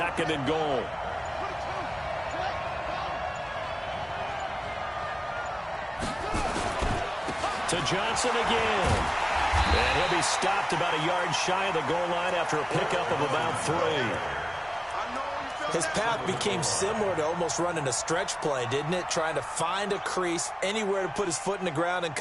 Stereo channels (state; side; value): identical; both; correlation 1.00